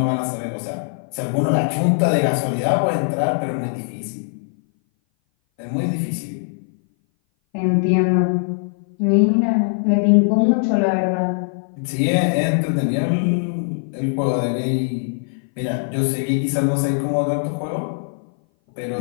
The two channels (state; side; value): silent; right; 59 dB below the other